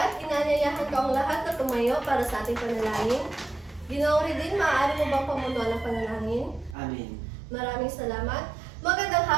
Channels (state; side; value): drops out; left; at 6.8 s